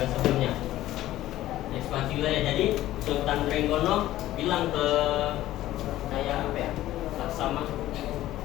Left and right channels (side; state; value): right; quieter; 14.7 dB